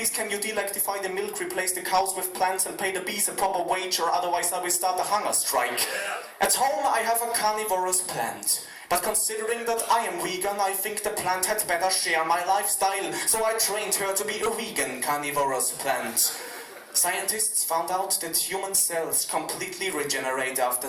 can you delectify the milk, replace the cows with plants, and pay the bees a proper wage, or otherwise I will start a hunger strike. At home, I have a carnivorous plant. But considering that I am vegan, I think the plant had better share my lifestyle. So I trained her to be a vegan carnivorous plant. Scientists found out that human cells completely regenerate after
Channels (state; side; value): identical; both; correlation 1.00